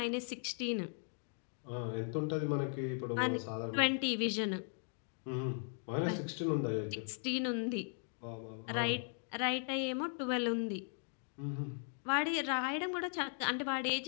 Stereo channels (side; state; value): right; silent; 52 dB below the other